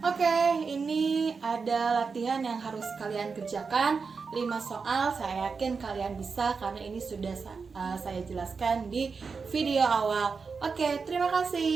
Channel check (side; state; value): left; quieter; 5.1 dB